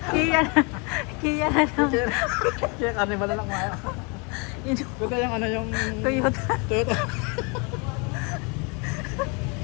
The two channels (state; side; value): quieter; right; 32.3 dB